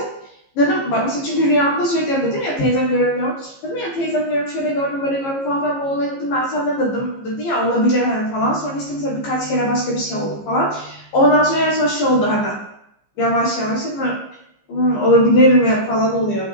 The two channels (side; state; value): right; late; 15 ms